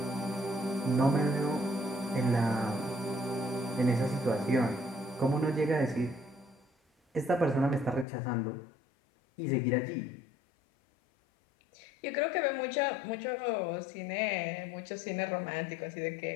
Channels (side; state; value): right; drops out; at 8.1 s